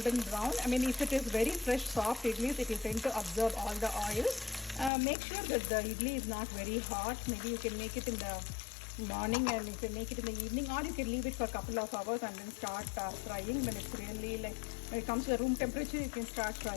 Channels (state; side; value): drops out; right; at 4.9 s